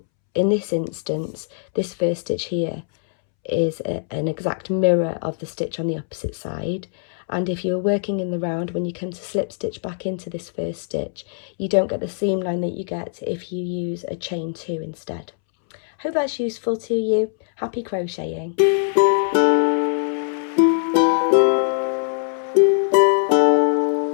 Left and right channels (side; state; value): right; silent; 64 dB below the other